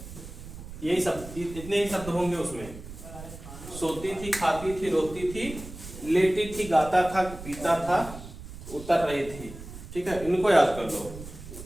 सब, इतने ही शब्द होंगे उसमें। सोती थी, खाती थी, रोती थी, लेटी थी, गाता था, पीता था, उतर रही थी। ठीक है, इनको याद कर लो।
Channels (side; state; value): right; noise; rumble, 13 dB below the sound